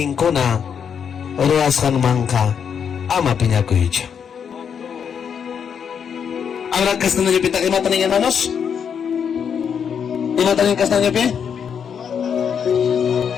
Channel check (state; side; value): quieter; right; 7.4 dB